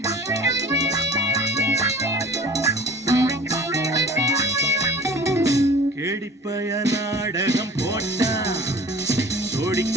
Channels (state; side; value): normal; both; correlation 0.45